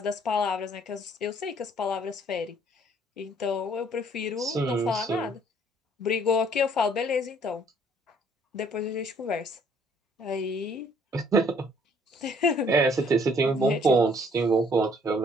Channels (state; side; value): normal; both; correlation 0.61